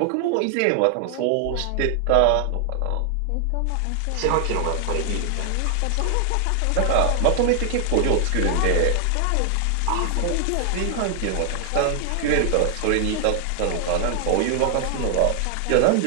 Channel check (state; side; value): different; both; correlation 0.00